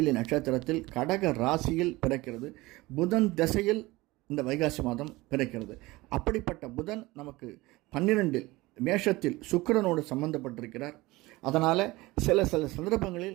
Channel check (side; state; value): left; quieter; 20.6 dB